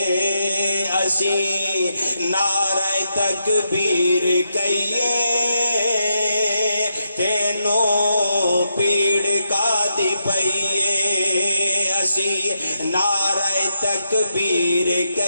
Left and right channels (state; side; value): inverted; both; correlation -0.83